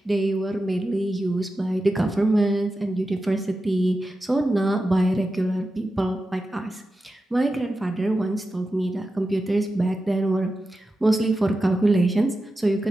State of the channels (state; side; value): normal; both; correlation 0.91